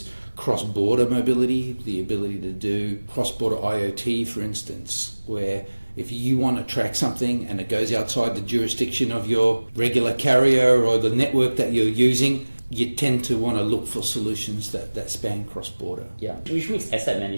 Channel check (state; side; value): inverted; both; correlation -1.00